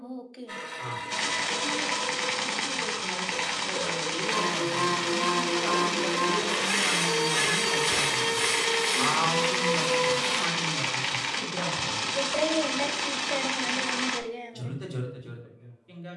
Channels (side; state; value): both; identical; correlation 1.00